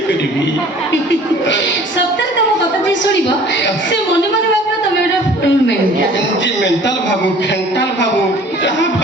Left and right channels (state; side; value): normal; both; correlation 0.49